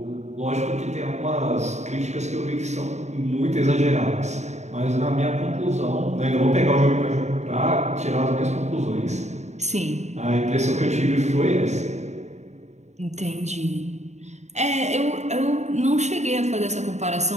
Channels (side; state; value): left; late; 0.33 ms